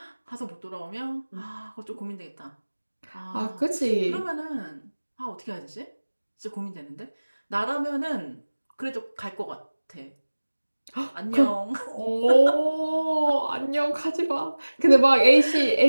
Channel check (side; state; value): both; inverted; correlation -1.00